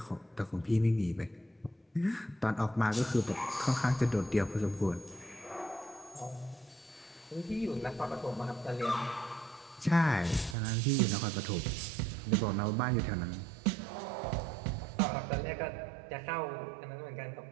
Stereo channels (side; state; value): left; drops out; at 10.6 s